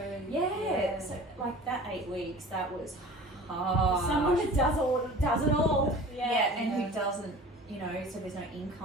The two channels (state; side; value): normal; both; correlation 0.41